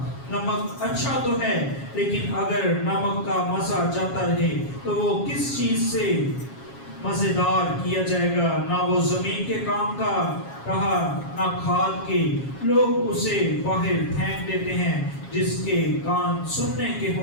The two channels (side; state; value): right; late; 7.3 ms